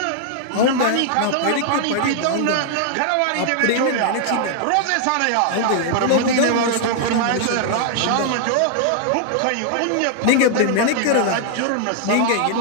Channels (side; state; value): both; different; correlation 0.00